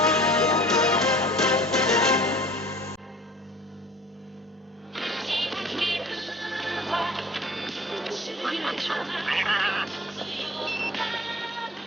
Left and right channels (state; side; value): normal; both; correlation 0.46